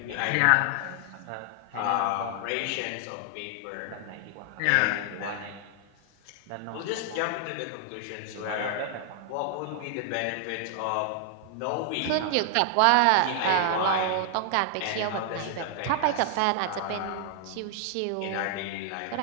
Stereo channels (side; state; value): both; different; correlation 0.00